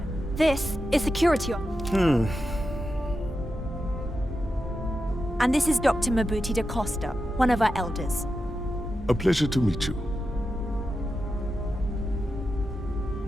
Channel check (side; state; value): both; normal; correlation 0.89